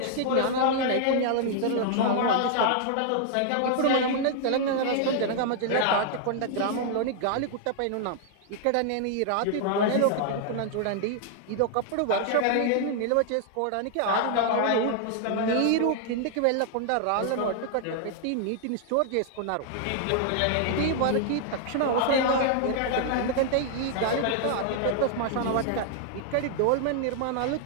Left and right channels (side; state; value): both; different; correlation -0.01